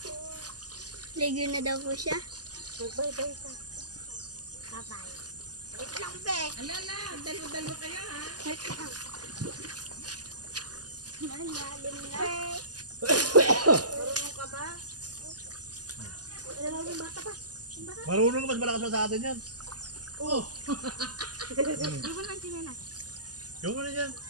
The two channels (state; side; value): late; left; 0.68 ms